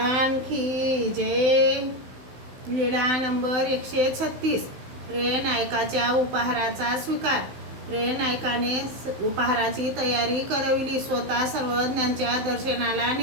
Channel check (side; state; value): left; late; 16 ms